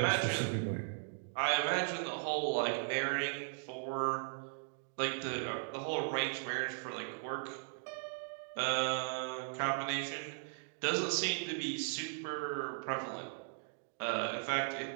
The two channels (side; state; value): left; silent; digital silence